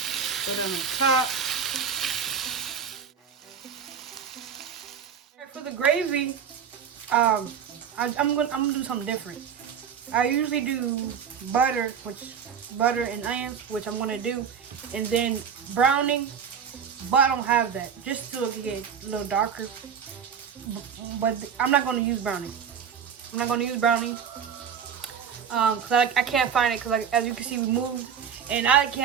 put it on the top. Right, for the gravy, I'm gonna do something different. I usually do butter and onions, which I'm gonna do, and then browning, but I don't have that. Just so it can get a little darker. But I'm not gonna use browning. Cause I can't find it, cause as you can see we moved and I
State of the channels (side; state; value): left; quieter; 7.4 dB